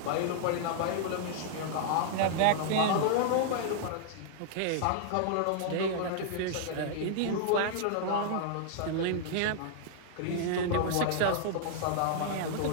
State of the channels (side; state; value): both; different; correlation -0.01